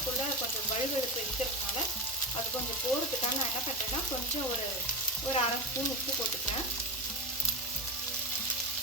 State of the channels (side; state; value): both; normal; correlation 0.18